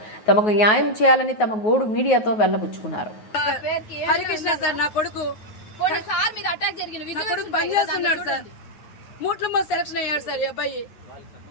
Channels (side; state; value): right; late; 9.3 ms